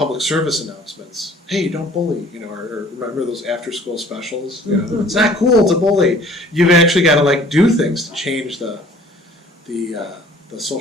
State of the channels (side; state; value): both; normal; correlation 0.52